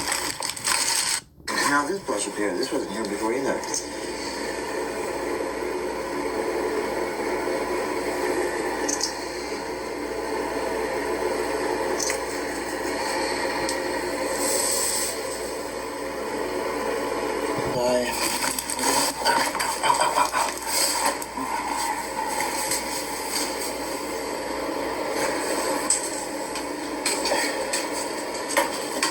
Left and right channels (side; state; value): both; identical; correlation 1.00